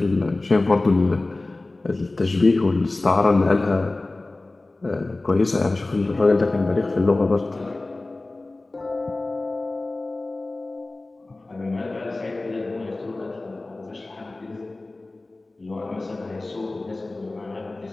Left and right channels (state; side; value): quieter; right; 3.0 dB